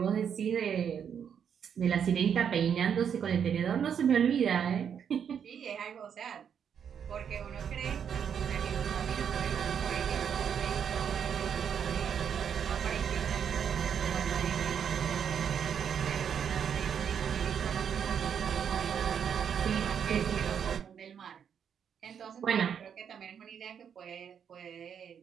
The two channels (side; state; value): left; quieter; 7.9 dB